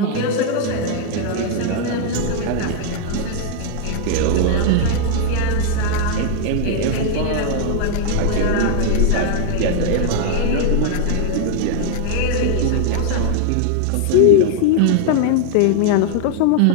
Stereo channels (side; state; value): both; different; correlation 0.00